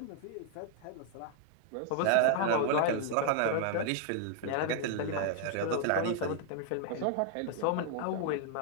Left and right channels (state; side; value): different; both; correlation 0.00